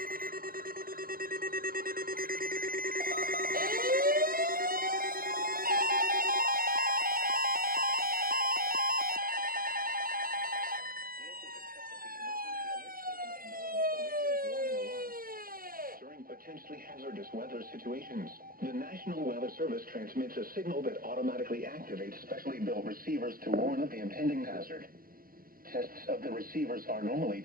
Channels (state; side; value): late; left; 0.42 ms